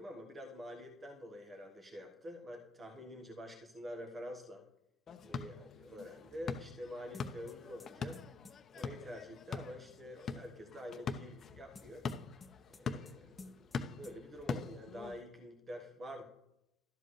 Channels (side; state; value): right; quieter; 3.1 dB